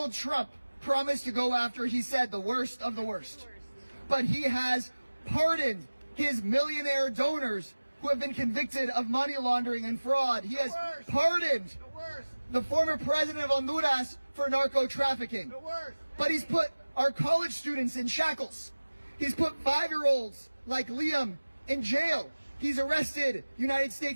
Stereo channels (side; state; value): both; inverted; correlation -1.00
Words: Trump promised to go after, he said, the worst of the worst. But he has pardoned his millionaire donors who have been convicted of money laundering and fraud. He has pardoned the former president of Honduras for narco trafficking. But he's put our college students in shackles. He's put 5-year-olds like Liam in jail. He's arrested United